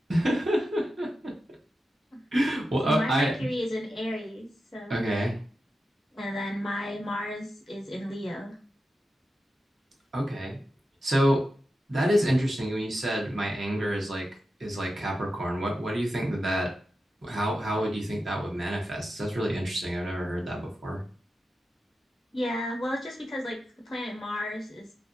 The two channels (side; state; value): both; normal; correlation 0.91